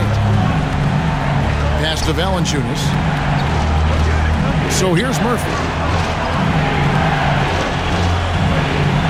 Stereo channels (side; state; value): both; identical; correlation 1.00